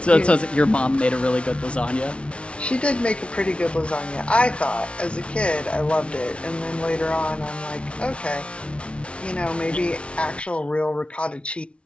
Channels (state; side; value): late; right; 0.060 ms